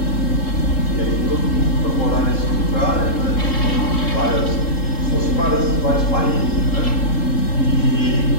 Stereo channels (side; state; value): right; late; 3.7 ms